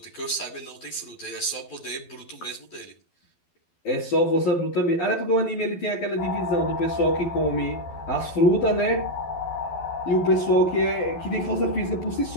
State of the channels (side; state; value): right; late; 12 ms